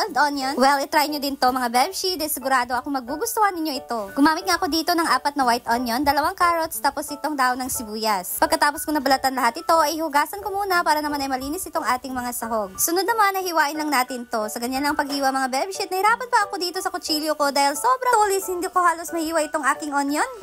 onion, well, i-try nyo din to mga Bebshi. Dahil sigurado ako magugustuhan ninyo ito. Gumamit nga ako dito ng 4 na white onion, 2 carrots, tapos itong daon ng sibuyas. Pagkatapos kong nabalatan lahat ito, ay hugasan ko muna para naman ay malinis itong ating mga sahog. Sunod naman ay hiwain lang natin to. Sa ganyan lang paghiwa mga Bebshi, nahirapan pa ako dito sa kutsilyo ko dahil sobrang tulis, hindi ko halos mahiwa itong aking onion.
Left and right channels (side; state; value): both; identical; correlation 1.00